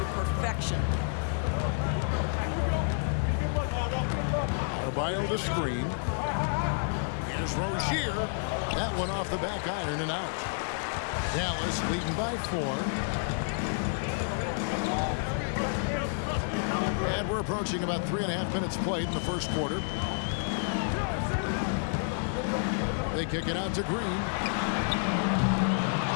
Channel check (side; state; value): right; silent; 58 dB below the other